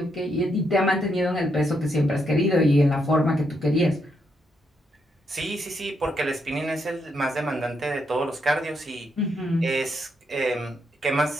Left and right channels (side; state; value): both; normal; correlation 0.78